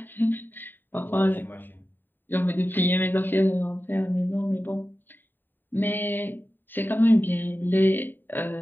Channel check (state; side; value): late; right; 0.093 ms